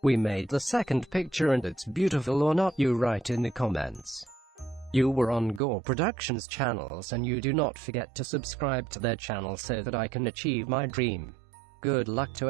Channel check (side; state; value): left; drops out; at 5.6 s